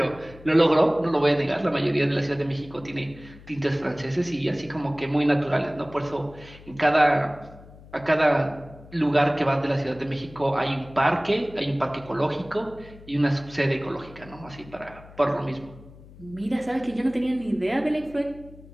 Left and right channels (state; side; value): noise; left; hum, 20 dB below the sound